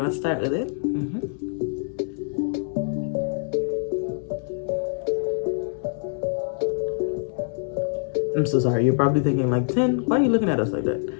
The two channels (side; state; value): right; silent; 62 dB below the other